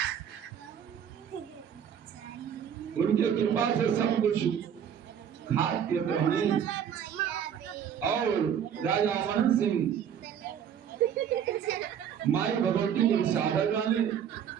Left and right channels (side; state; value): left; quieter; 8.7 dB